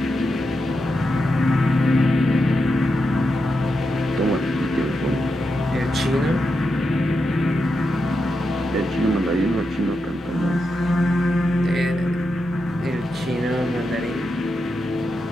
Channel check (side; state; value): both; normal; correlation 0.87